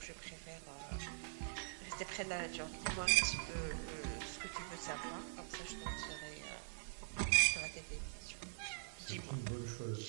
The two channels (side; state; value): left; silent; digital silence